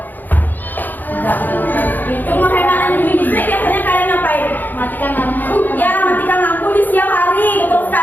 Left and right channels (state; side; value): late; right; 0.086 ms